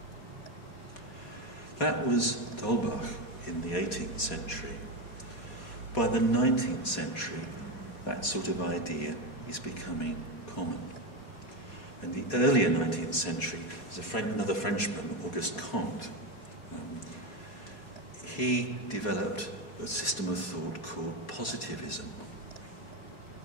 That was D'Holbach in the 18th century. By the 19th century, that sort of idea is becoming common. In the earlier 19th century, there's another Frenchman, Auguste Comte. He developed a system of thought called positivism.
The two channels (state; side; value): late; right; 4.2 ms